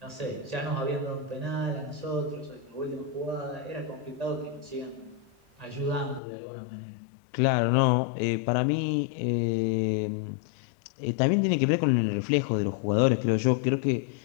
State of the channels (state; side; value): drops out; right; at 6.2 s